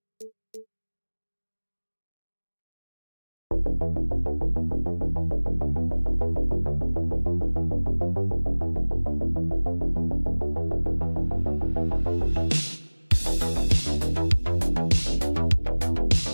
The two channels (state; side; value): inverted; both; correlation -1.00